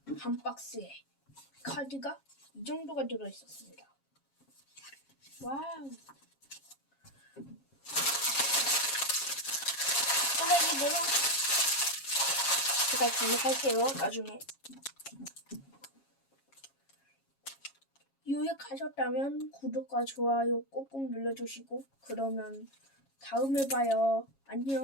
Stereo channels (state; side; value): late; right; 7.3 ms